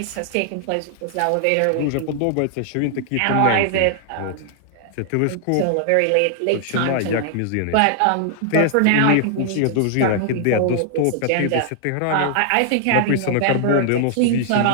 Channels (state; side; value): different; both; correlation 0.00